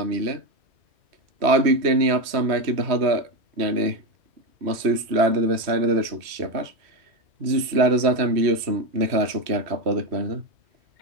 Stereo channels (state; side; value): late; left; 3.1 ms